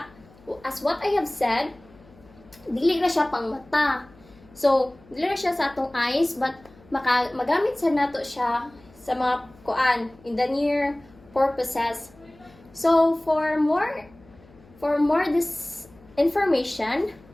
as what I have said, dili na siya pang mata. So, dili na siya sa atong eyes, but magamit sa nato siya sa mga kuan in the near purposes. So, for more this information,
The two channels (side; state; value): left; noise; hum, 26 dB below the sound